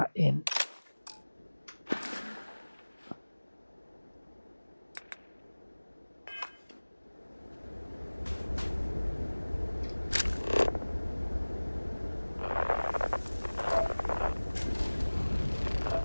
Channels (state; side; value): inverted; both; correlation -1.00